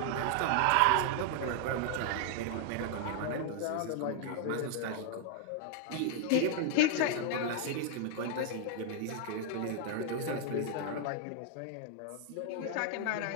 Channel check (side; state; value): both; different; correlation 0.00